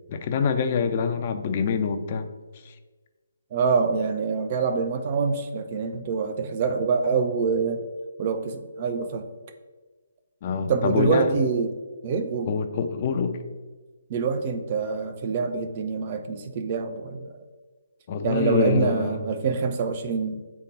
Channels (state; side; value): inverted; both; correlation -0.54